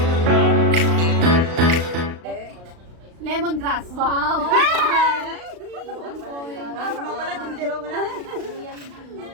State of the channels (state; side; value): late; left; 35 ms